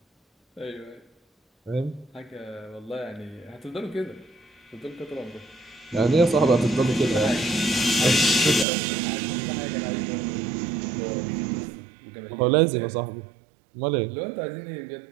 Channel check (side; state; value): left; drops out; at 8.7 s